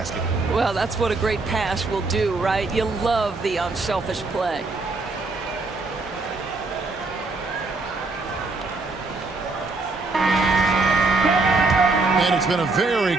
Well, that's what a great pass will do, right? You love the unselfish play. And it's been a very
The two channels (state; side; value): quieter; left; 3.6 dB